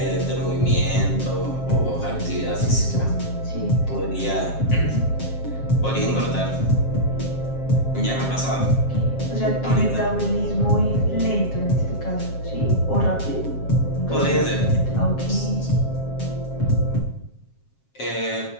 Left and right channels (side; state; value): right; late; 7.4 ms